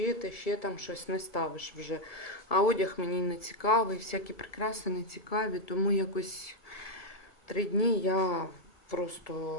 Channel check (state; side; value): late; right; 1.6 ms